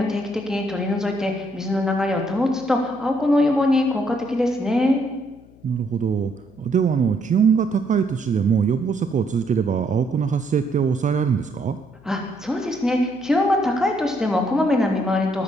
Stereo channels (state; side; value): noise; left; hum, 26 dB below the sound